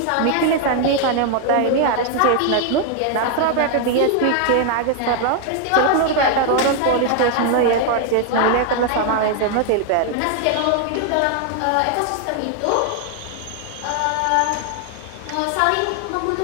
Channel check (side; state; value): both; different; correlation 0.00